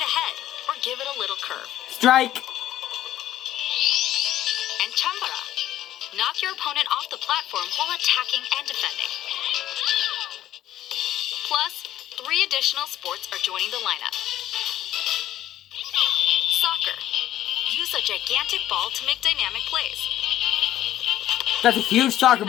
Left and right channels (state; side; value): quieter; right; 13.0 dB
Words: ahead or give it a little curve. Strike. And Chambara. Knock your opponent off the platform while attacking and defending. Plus, 3 additional sports are joining the lineup. Soccer. Use a gigantic ball to make dynamic plays. That's a huge soccer